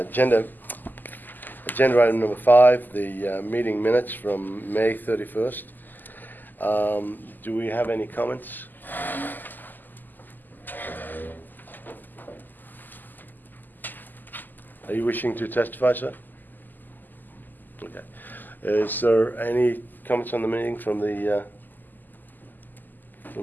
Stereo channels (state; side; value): late; right; 0.087 ms